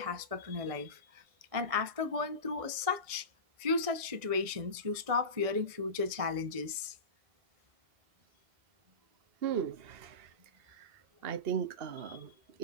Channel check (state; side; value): late; left; 1.6 ms